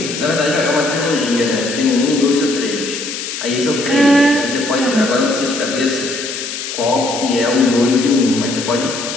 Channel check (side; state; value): left; noise; hiss, 7 dB below the sound